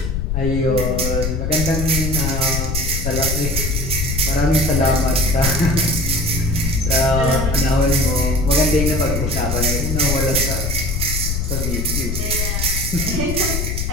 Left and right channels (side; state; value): left; noise; rumble, 1 dB below the sound